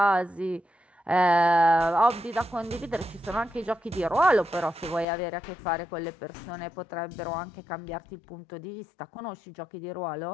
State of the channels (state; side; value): drops out; right; at 5.1 s